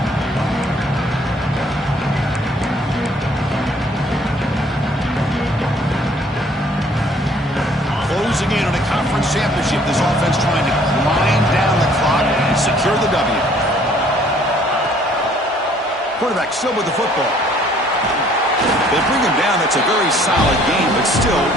Closing in on a conference championship, this offense trying to grind down the clock and secure the W. Quarterback still with the football. They bring him down. That's a very solid game, but still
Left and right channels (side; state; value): both; normal; correlation 0.59